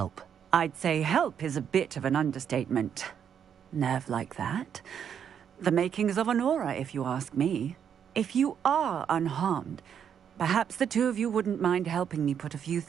I'd say help is a bit of an understatement. Nerve like that. The makings of an aura, if you ask me. If you are unharmed, perhaps the two of you wouldn't mind helping me put a few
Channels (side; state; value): left; quieter; 8.2 dB